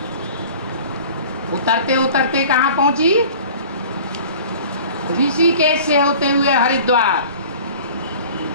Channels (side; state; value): both; inverted; correlation -0.44